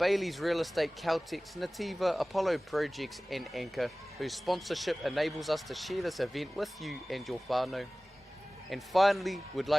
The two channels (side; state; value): both; normal; correlation 0.98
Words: Real Estate, Caltex, Nativa, Apollo Projects and Anchor, whose sponsorship enables us to share this event with you and your whānau. And finally, we'd